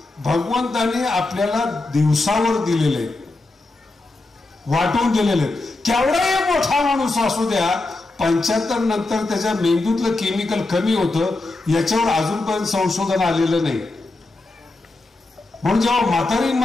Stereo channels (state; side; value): quieter; right; 3.1 dB